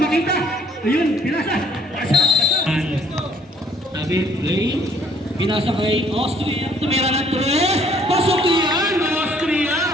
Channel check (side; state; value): both; normal; correlation 0.61